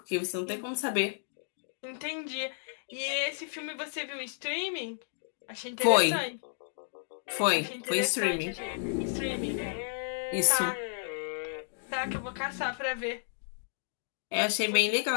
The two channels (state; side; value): silent; right; digital silence